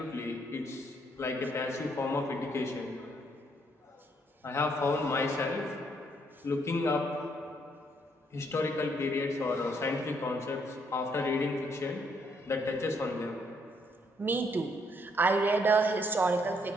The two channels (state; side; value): normal; both; correlation 0.71